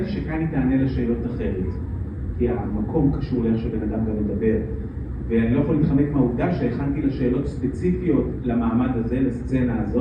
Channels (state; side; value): identical; both; correlation 1.00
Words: שכאן היא תענה לשאלות אחרת, כי המקום קשור לאיך שבן אדם גם מדבר. ואני לא יכול להתחמק מהעובדה שהכנתי לשאלות ספציפיות למעמד הזה, לסצנה